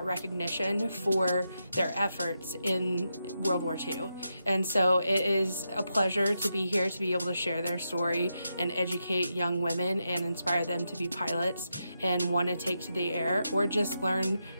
recognition for their efforts in World War II. And so it is a pleasure to be here to be able to share their story and educate young women and inspire them to be pilots and want to take to the air, or just learn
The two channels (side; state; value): both; inverted; correlation -0.86